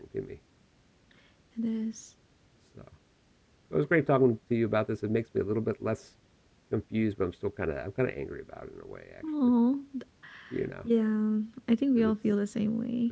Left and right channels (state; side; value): identical; both; correlation 1.00